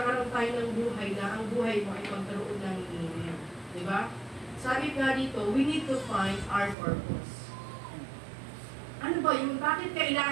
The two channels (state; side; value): drops out; left; at 6.8 s